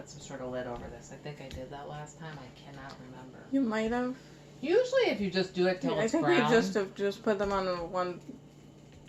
some sort of lid over this. I think I did that last time. I cannot remember. You might have. Usually, if you just do it till it's brown. I think you just put them on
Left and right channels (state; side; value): identical; both; correlation 1.00